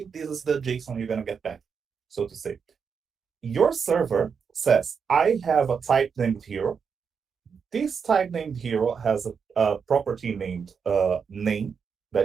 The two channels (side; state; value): left; quieter; 6.2 dB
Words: this is the JSON you're gonna get back, so to say. Your server says, I have a type named hero. This type named hero has a property named name,